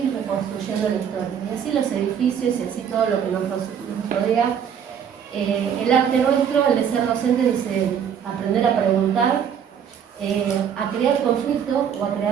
reconstruyendo la historia. Y así los edificios y así todo lo que nos rodea. El arte nuestro, el de ser docente, dice aprender a preguntar, a crear conflicto o a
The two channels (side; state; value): left; quieter; 8.1 dB